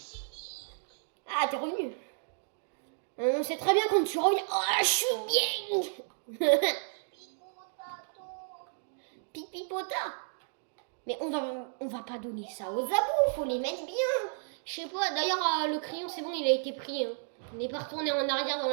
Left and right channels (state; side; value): silent; left; digital silence